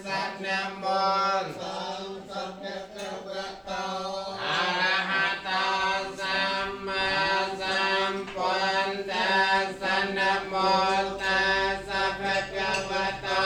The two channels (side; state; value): both; identical; correlation 1.00